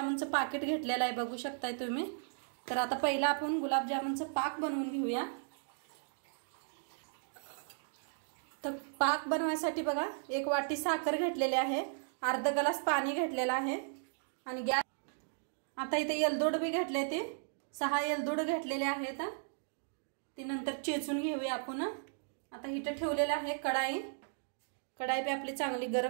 पाकिट घेतलेलं आहे, बघू शकताय तुम्ही। तर आता पहिला आपण गुलाबजामुनचं पाक बनवून घेऊया। तर पाक बनवण्यासाठी बघा, 1 वाटी साखर घेतलेली आहे, अर्धा ग्लास पाणी घेतलेलं आहे आणि गॅस आता इथे एलदोड बी घेतले, ते 6 एलदोड घेतलेले आहेत। ती नंतर चेचून घेऊया आपण। आता इथे ठेवलेला आहे कढाई बी आपली चांगली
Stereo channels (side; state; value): left; silent; digital silence